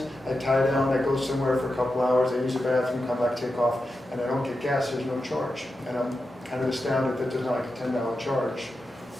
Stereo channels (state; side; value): normal; both; correlation 0.90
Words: I tie down, I go somewhere for a couple hours, I use a bathroom, come back, take off, and I don't get gas, there's no charge. And I'm kind of astounded that there's not like a $10 charge